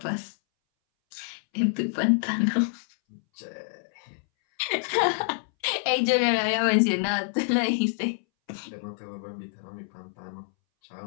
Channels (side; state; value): right; silent; 60 dB below the other